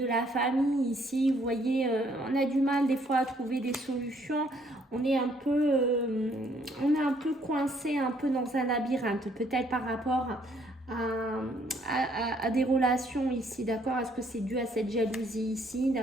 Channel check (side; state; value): both; normal; correlation 0.66